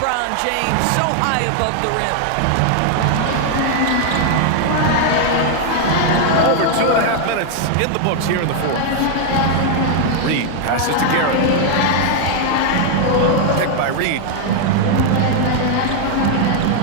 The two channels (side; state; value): both; different; correlation 0.00